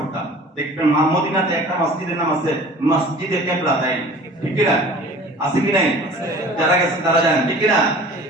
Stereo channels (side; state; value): both; normal; correlation 0.44